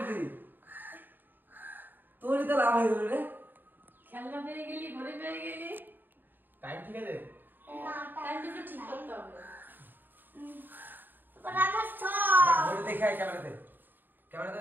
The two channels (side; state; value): left; late; 0.092 ms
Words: তোরই তো লাভ হয়ে গেল রে। খেলনা পেয়ে গেলি, ঘড়ি পেয়ে গেলি। টাইম ঠিক আছে? টাইমটা একটু ঠিক করতে হবে। ঘড়ি দেখে আয় ক্যামেরাতে